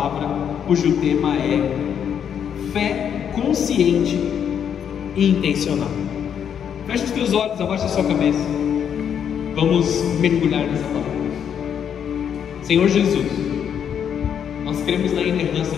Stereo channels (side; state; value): right; quieter; 8.3 dB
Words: cujo tema é fé consciente e intencional. Feche os teus olhos, abaixa a sua cabeça. Vamos mergulhar nessa palavra. Senhor Jesus, nós cremos na inerrância